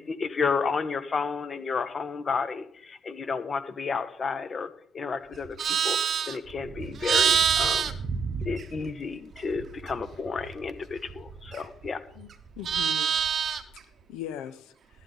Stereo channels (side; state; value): both; normal; correlation 0.73